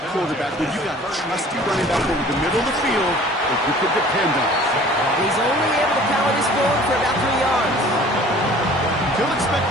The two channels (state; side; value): normal; both; correlation 0.49